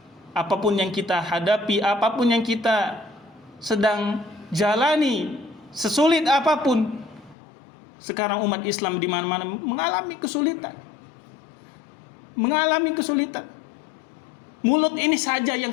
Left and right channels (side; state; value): right; drops out; at 7.4 s